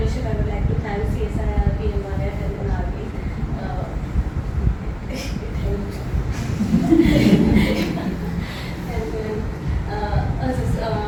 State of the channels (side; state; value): both; identical; correlation 1.00